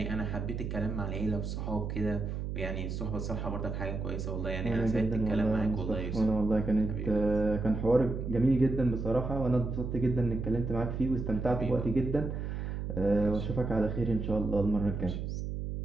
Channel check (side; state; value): right; noise; hum, 4 dB below the sound